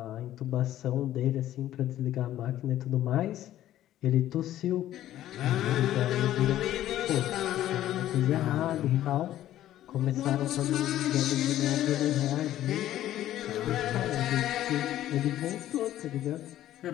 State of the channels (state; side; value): quieter; right; 13.0 dB